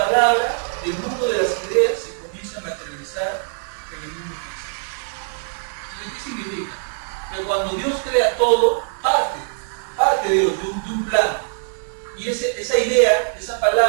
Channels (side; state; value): left; silent; 64 dB below the other